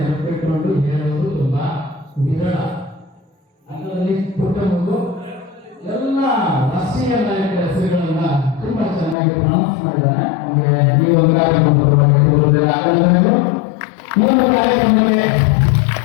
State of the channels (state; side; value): drops out; right; at 9.2 s